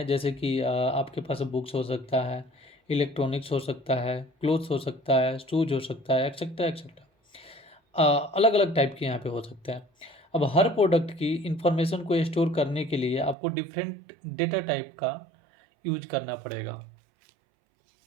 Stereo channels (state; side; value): drops out; left; at 13.4 s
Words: जैसे कि आपके पास बुक्स हो सकता है, इलेक्ट्रॉनिक्स हो सकता है, क्लोथ्स हो सकता है, शूज हो सकता है, एक्सेट्रा एक्सेट्रा। अलग अलग टाइप के यहाँ पे हो सकते हैं। अब हर प्रोडक्ट की इंफॉर्मेशन को स्टोर करने के लिए आपको डिफरेंट डेटा टाइप का यूज करना पड़ेगा।